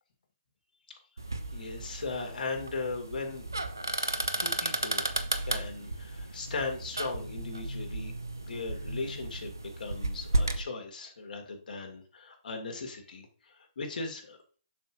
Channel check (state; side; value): inverted; both; correlation -0.62